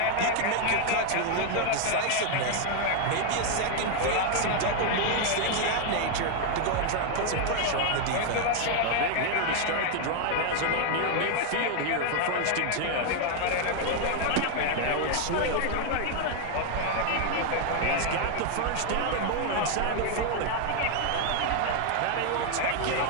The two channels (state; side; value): different; both; correlation 0.00